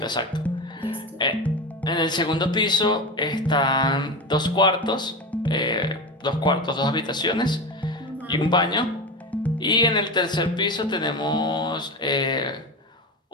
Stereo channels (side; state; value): both; normal; correlation 0.22